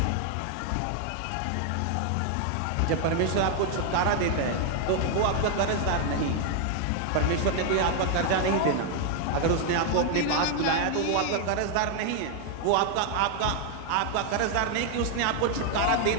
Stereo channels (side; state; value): both; different; correlation 0.00